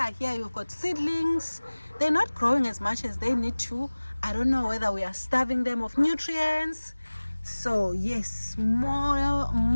got seedlings. They're not growing as much as they need to. I don't know whether we are starving them of nutrients. So yes,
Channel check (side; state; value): both; inverted; correlation -1.00